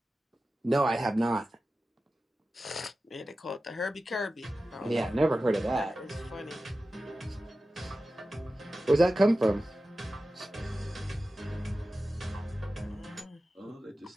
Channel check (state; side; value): normal; both; correlation 0.94